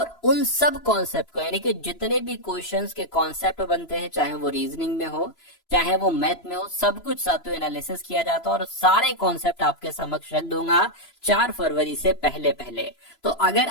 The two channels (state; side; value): late; right; 3.0 ms